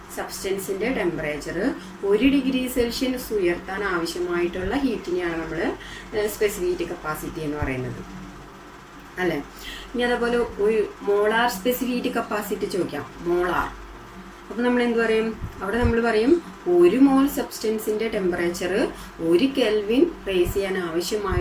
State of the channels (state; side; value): identical; both; correlation 1.00